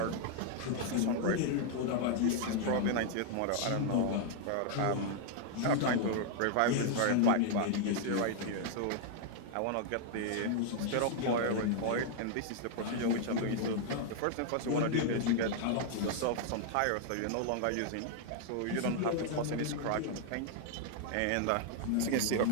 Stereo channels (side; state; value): both; different; correlation 0.00